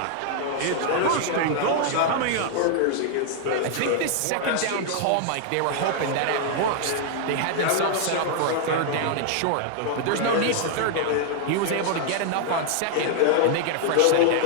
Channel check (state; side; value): different; both; correlation 0.00